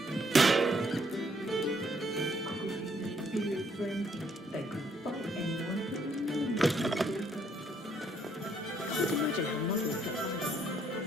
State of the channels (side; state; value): both; normal; correlation 0.69